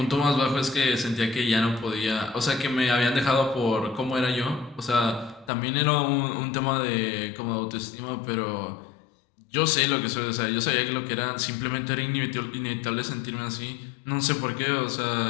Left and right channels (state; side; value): drops out; right; at 5.5 s